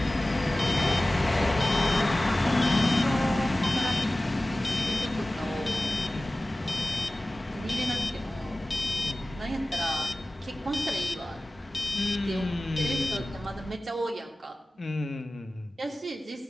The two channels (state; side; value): normal; both; correlation 0.97